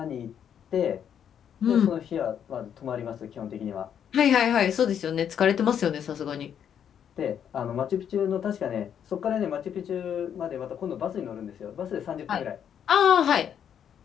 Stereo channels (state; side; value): quieter; right; 8.8 dB